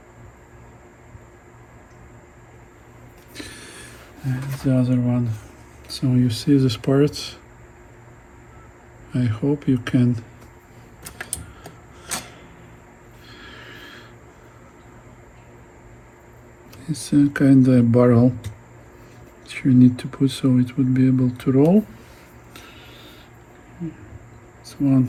And the other one. So you see this part. I hope you can it's a kind of barrel that you need to put so it would be able to roll. This one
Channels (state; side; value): identical; both; correlation 1.00